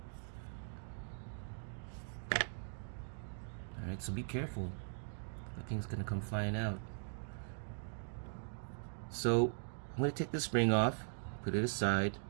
Alright, so be careful. That thing's gonna come flying out. So I'm gonna take the spring off, put it aside,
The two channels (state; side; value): silent; left; digital silence